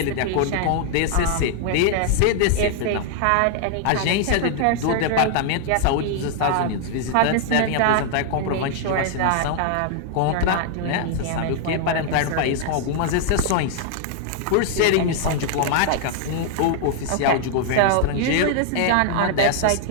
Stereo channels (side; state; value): both; different; correlation 0.00